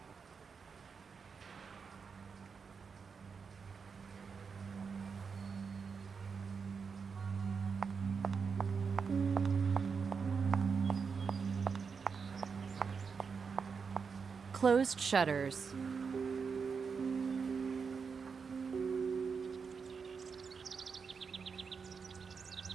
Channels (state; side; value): quieter; left; 5.6 dB